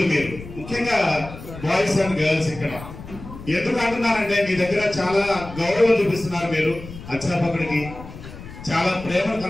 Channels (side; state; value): left; noise; rumble, 14 dB below the sound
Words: మీరు ముఖ్యంగా బాయ్స్ అండ్ గర్ల్స్ ఇక్కడ ఎందుకు అంటున్నారంటే, మీ దగ్గర చాలా గౌరవం చూపిస్తున్నారు. మీరు అధ్యాపకుడికి చాలా ప్రేమను